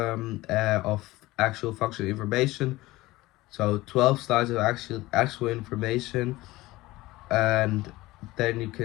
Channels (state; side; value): quieter; right; 18.9 dB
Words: actual functional information. So 12 slides of actual information, and then you